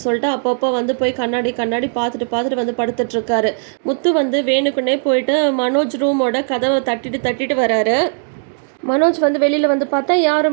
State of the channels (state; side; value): silent; left; digital silence